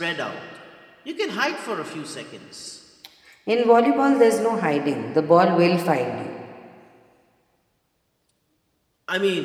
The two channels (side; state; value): both; identical; correlation 1.00